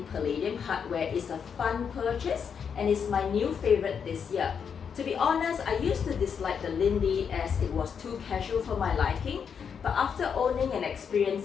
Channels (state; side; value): quieter; right; 6.9 dB